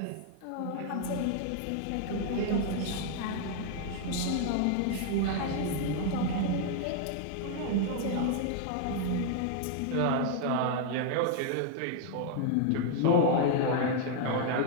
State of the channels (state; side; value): different; both; correlation 0.00